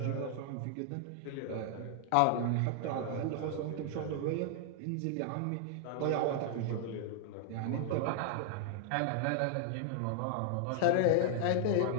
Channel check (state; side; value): different; both; correlation 0.00